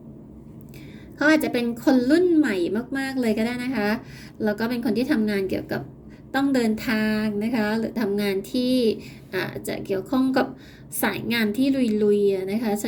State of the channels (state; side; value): identical; both; correlation 1.00